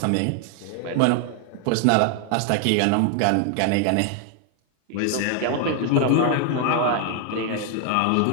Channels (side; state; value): both; different; correlation 0.00